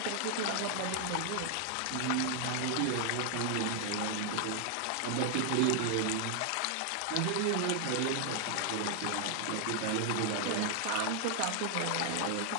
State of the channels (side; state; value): both; different; correlation 0.00